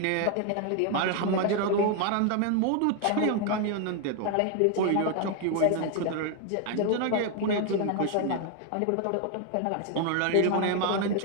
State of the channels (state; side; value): different; both; correlation 0.01